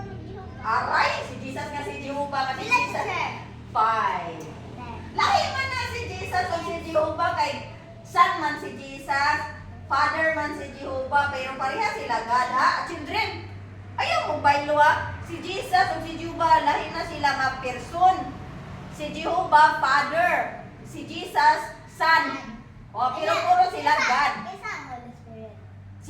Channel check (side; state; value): both; identical; correlation 1.00